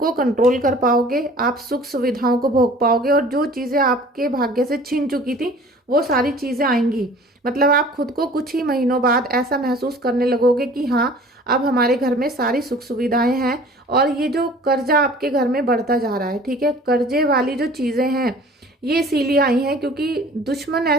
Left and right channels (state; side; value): normal; both; correlation 0.48